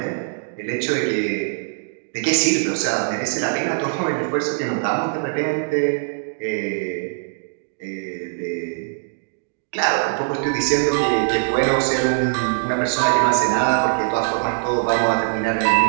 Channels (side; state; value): left; silent; 64 dB below the other